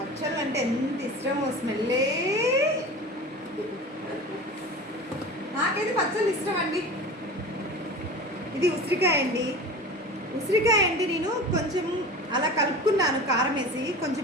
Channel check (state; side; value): normal; both; correlation 0.34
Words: అంటే ఎంత ఇష్టమో, స్మెల్లే. నాకైతే పచ్చళ్ళు ఇష్టం అండి. ఇది ఉసిరికాయ అండి. ఉసిరికాయ అండి నేను కొంచెం అలా కలుపుకున్నాను కారం వేసి.